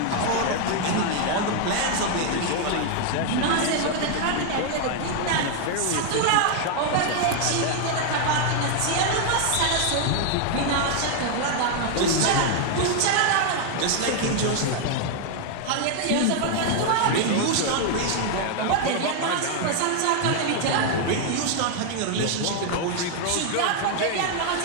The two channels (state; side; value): different; both; correlation 0.00